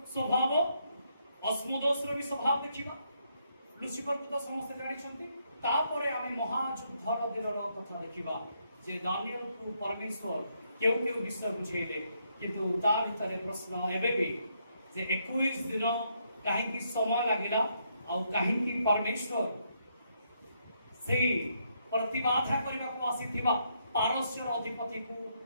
ସ୍ୱଭାବ ଅସ୍ମୋଦୋସର ବି ସ୍ୱଭାବ ଦେଖିବା ଲୁସିଫରକୁ ତ ସମସ୍ତେ ଜାଣିଛନ୍ତି ତାପରେ ଆମେ ମହାଯୁଦ୍ଧର ଦିନର କଥା ଦେଖିବା ଯେ ଦାନିଏଲକୁ ପରମେଶ୍ୱର କେଉଁ କେଉଁ ବିଷୟ ବୁଝେଇଲେ କିନ୍ତୁ ତା ଭିତରେ ପ୍ରଶ୍ନ ଏବେ ବି ଯେ 21 ଦିନ କାହିଁକି ସମୟ ଲାଗିଲା ଆଉ କାହିଁକି ପରମେଶ୍ୱର ସେଇ ପ୍ରତିବାଧା କରିବାକୁ ଆସିଥିବା ପାରସ୍ୟର ଅଧିପତିକୁ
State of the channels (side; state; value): both; inverted; correlation -0.76